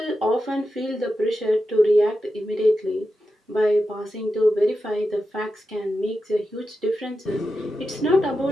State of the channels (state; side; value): normal; both; correlation 0.90